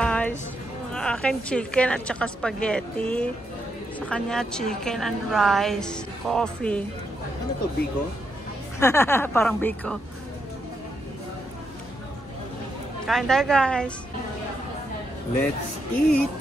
Akin chicken at saka spaghetti. Sa kanya chicken and rice. Coffee. Ano to, Biko? Parang Biko. Kain tayo guys. Let's eat!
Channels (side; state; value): both; normal; correlation 0.81